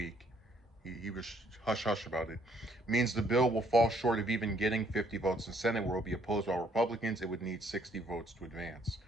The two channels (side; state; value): both; normal; correlation 0.66